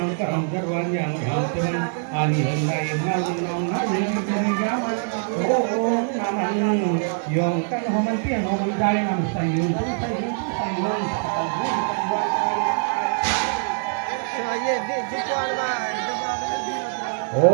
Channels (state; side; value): silent; left; 62 dB below the other